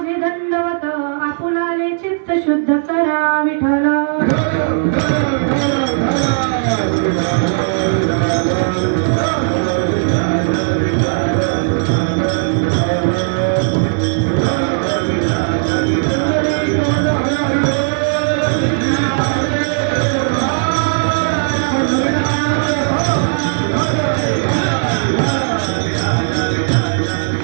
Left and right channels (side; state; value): left; silent; digital silence